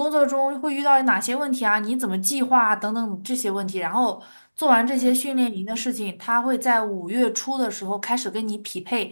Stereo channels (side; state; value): both; inverted; correlation -1.00